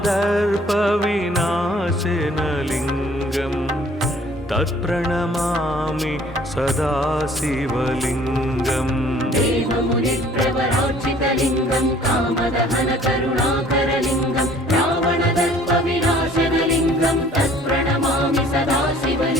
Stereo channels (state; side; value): normal; both; correlation 0.54